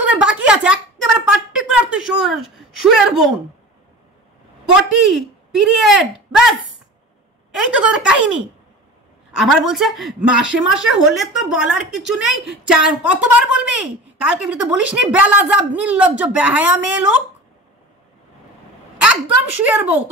তোদের বাকি আছে? একেবারে পার্টিকুলার তুই শুয়ের বোন, পটি, পিরিয়ড, ব্যাস, এই তো তোদের কাহিনী। আবার বলছে মাসে মাসে হলে তো বলার কিছু নেই, কতবার বলবি? কালকে তো বলিস নি বেলাজাব নির্লজ্জ বেহায়া মেয়ে লোক, একদম শুয়ের বউ।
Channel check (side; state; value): both; normal; correlation 0.36